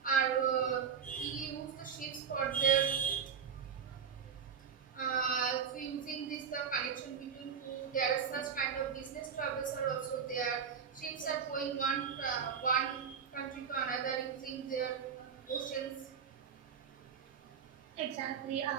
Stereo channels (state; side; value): quieter; left; 7.0 dB